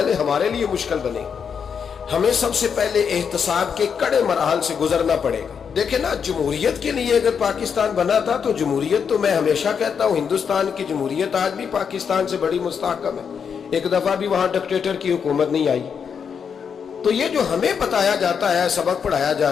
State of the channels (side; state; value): right; quieter; 6.8 dB